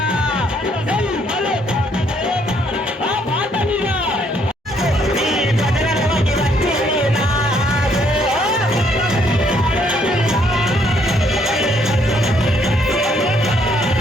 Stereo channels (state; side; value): normal; both; correlation 0.68